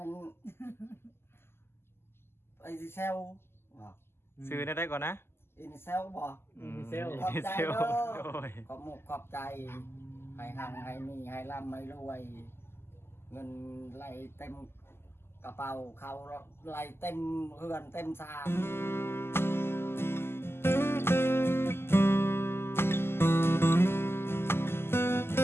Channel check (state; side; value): late; right; 0.12 ms